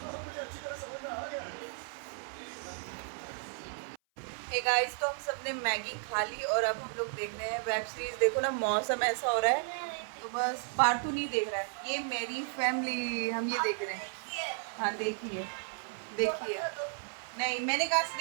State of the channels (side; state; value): left; silent; 55 dB below the other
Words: हे गाइस, तो हम सबने मैगी खा ली और अब हम लोग देख रहे हैं वेब सीरीज। देखो ना, मौसम ऐसा हो रहा है तो बस पार्टू नहीं देख रहा है। ये मेरी फैमिली, हम ये देख रहे हैं। हाँ देखिए देखिए। नहीं मैंने कहा से